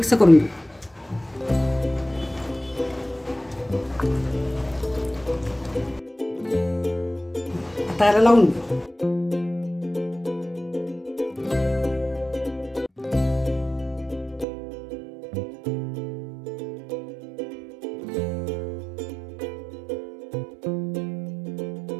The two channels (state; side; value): drops out; left; at 14.5 s